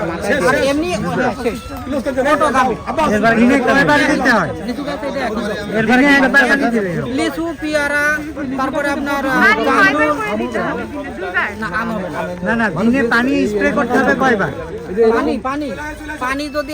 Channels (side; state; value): both; identical; correlation 1.00